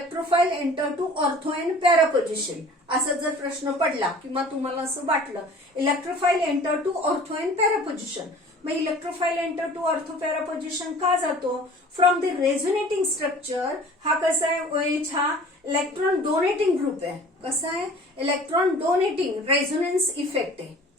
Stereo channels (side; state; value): both; normal; correlation 0.46